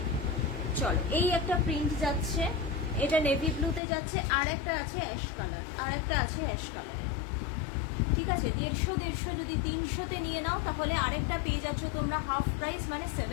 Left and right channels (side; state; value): right; drops out; at 3.8 s